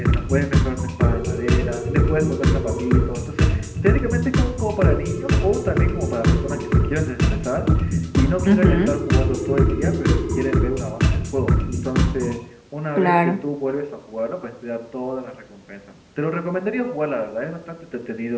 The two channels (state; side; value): identical; both; correlation 1.00